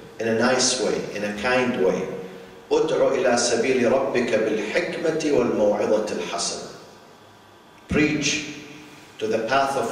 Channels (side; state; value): both; identical; correlation 1.00